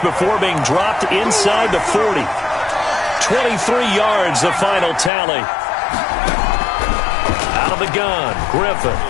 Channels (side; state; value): right; drops out; at 5.1 s